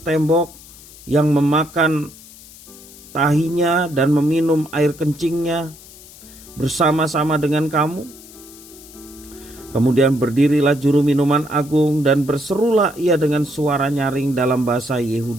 tembok, yang memakan tahinya dan meminum air kencingnya bersama-sama dengan kamu? Kemudian berdirilah juru minuman agung dan berserulah ia dengan suara nyaring dalam bahasa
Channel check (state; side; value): noise; left; hiss, 20 dB below the sound